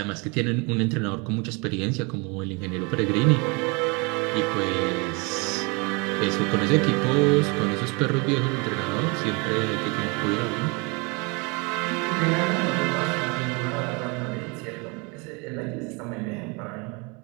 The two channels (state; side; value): quieter; left; 29.9 dB